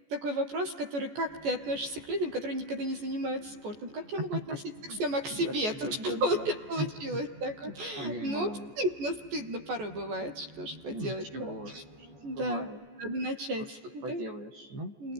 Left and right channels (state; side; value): late; left; 14 ms